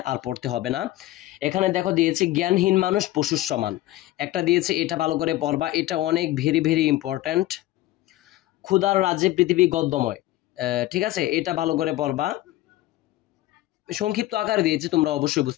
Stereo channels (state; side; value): quieter; right; 15.9 dB